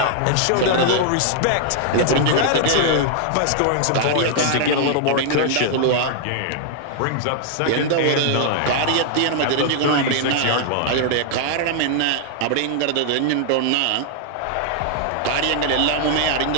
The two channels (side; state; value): both; different; correlation 0.00